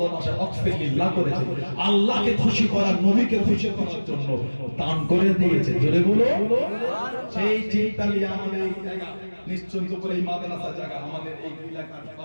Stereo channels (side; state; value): both; inverted; correlation -1.00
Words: ওয়াকফে লিল্লাহ করেছে, আল্লাহকে খুশি করার, নবীকে খুশি করার জন্য দান করে দিয়েছে। জোরে বলো। সেই চিন্তা নিয়ে আমাদের এই জায়গা নিশ্চিন্ত করে এই মাদ্রাসা জায়গা, আমাদের এই এলাকার